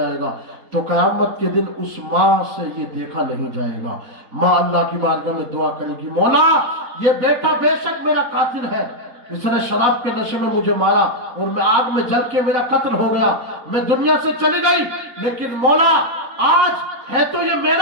گا، تو قیامت کے دن اس ماں سے یہ دیکھا نہیں جائے گا۔ ماں اللہ کی بارگاہ میں دعا کرے گی، مولا یہ بیٹا بے شک میرا قاتل ہے، اس نے شراب کے نشے میں مجھے مارا اور میں آگ میں جل کے میرا قتل ہو گیا، میں دنیا سے چلی گئی، لیکن مولا آج ہے تو یہ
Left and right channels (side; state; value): left; late; 3.9 ms